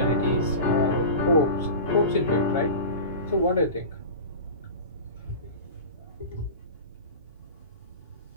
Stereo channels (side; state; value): both; inverted; correlation -0.31